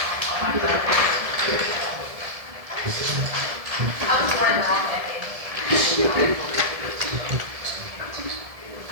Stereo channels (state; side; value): late; left; 1.7 ms